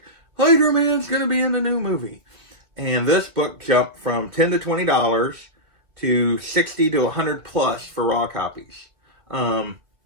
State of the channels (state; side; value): late; left; 2.5 ms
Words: Spider-Man's going to be in the new movie. And this book jumped from $10 to $20 to $60 to $100 plus for raw copies.